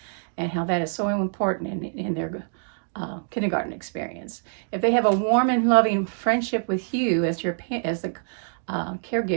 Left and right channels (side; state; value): left; silent; digital silence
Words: and how that is so important in their kindergarten experience. If they have a warm and loving friendship with you as the